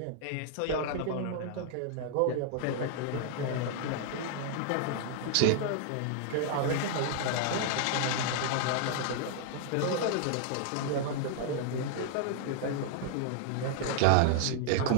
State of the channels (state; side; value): different; both; correlation -0.01